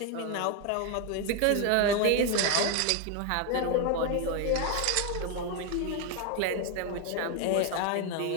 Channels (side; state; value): both; different; correlation 0.01